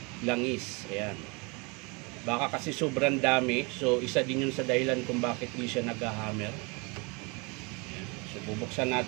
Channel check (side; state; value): left; quieter; 29.6 dB